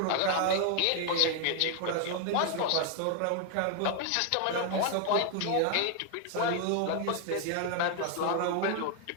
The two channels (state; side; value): different; both; correlation 0.00